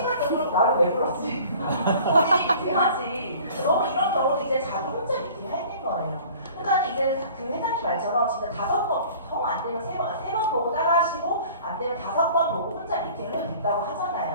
나를 왜 불렀지? 본인이 미팅하지. 너무 이런 경우는 이제 자기 혼자 미팅 할 때인 거예요. 그러니까 이제 그 회장님 말처럼 진짜 5번, 정 안 되면 3번 보고 따라하시고 안 되면 5번 보고 혼자 미팅을 해도 된다고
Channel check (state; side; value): inverted; both; correlation -0.47